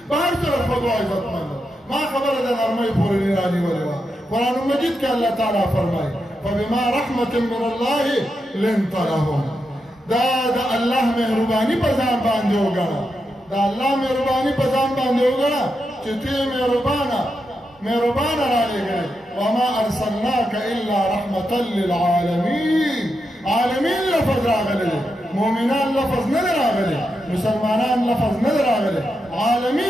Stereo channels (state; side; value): normal; both; correlation 0.86